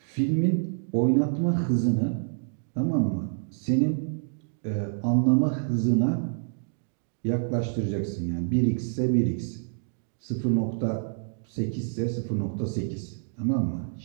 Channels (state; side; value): silent; left; digital silence